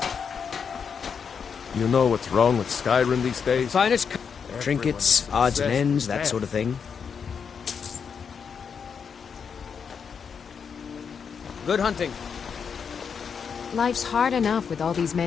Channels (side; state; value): right; quieter; 6.5 dB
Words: You know what's wrong with Skyrim these days? Finest trinkets, odds and ends, that sort of thing. Good hunting. Life's hard enough with all these